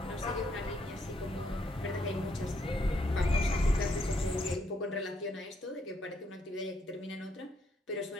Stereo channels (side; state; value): both; normal; correlation 0.73